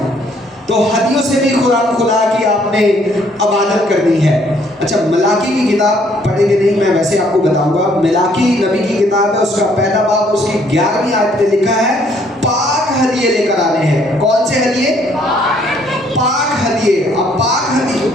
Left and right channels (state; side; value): normal; both; correlation 0.65